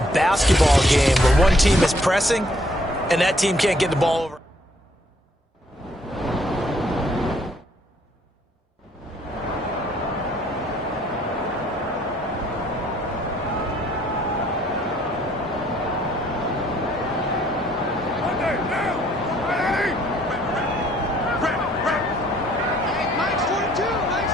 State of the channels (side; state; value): both; normal; correlation 0.64